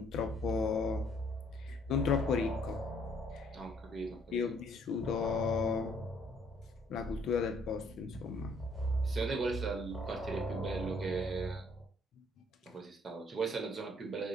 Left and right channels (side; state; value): both; normal; correlation 0.64